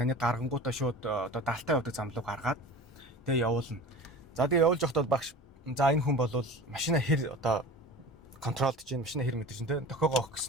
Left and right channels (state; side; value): normal; both; correlation 0.36